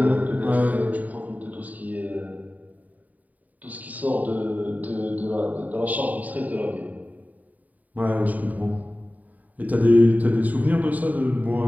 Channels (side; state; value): left; late; 0.075 ms